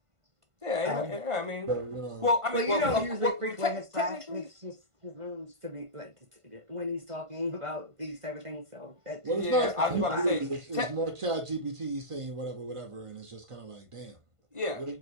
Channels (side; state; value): left; late; 1.5 ms